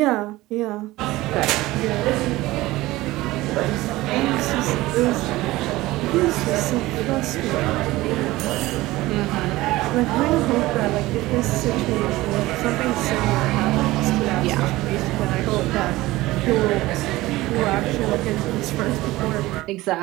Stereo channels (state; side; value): quieter; left; 18.4 dB